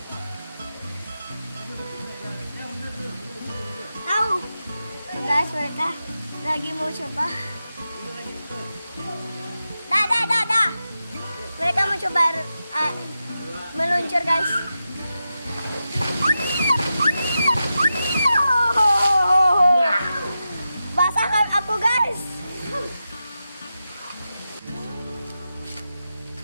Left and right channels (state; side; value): inverted; both; correlation -0.90